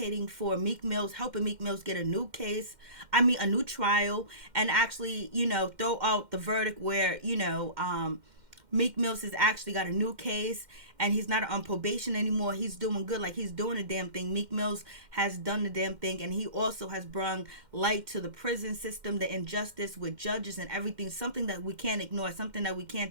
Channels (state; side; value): late; left; 2.1 ms